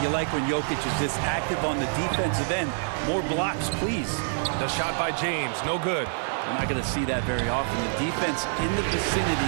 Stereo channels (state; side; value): silent; left; 60 dB below the other